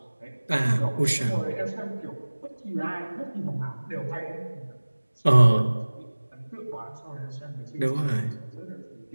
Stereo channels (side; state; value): both; inverted; correlation -1.00